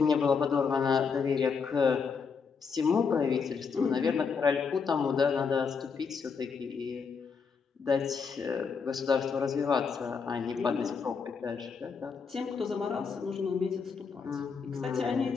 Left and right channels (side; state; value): right; quieter; 5.6 dB